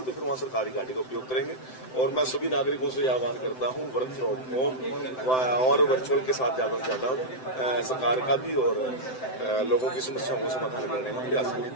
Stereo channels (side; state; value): right; late; 7.8 ms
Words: तो फिर वहाँ सरकारी गाड़ी का उपयोग करेंगे। और मैं सभी नागरिकों से आह्वान करता हूँ वर्क फ्रॉम होम और वर्चुअल के साथ ज्यादा से ज्यादा सरकार का भी और लोगों की समस्याओं को समाधान करने में प्रयास करें।